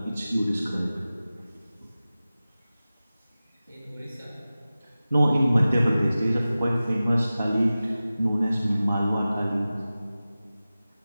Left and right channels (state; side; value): inverted; both; correlation -0.96